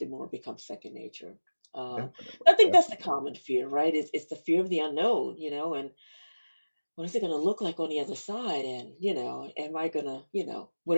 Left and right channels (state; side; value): inverted; both; correlation -1.00